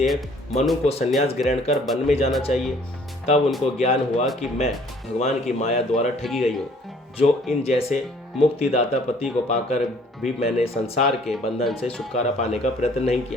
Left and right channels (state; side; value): normal; both; correlation 0.57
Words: मनु को संन्यास ग्रहण कर वन में जाना चाहिए। तब उनको ज्ञान हुआ कि मैं भगवान की माया द्वारा ठगी गई हूँ, जो इन जैसे मुक्तिदाता पति को पाकर भी मैंने संसार के बंधन से छुटकारा पाने का प्रयत्न नहीं